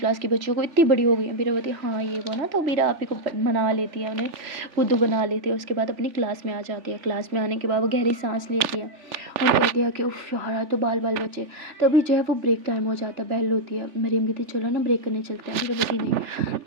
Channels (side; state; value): left; late; 3.4 ms